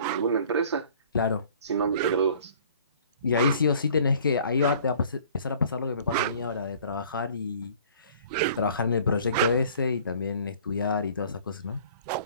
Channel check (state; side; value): inverted; both; correlation -0.52